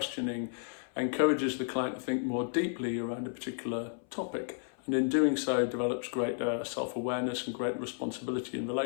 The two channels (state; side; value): silent; right; 56 dB below the other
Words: encourages the client to think more deeply around a particular topic, and in doing so develops greater self-awareness and greater responsibility in